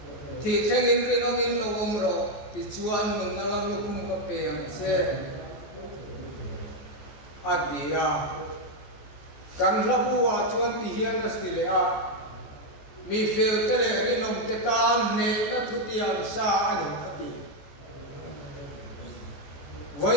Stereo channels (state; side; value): late; right; 14 ms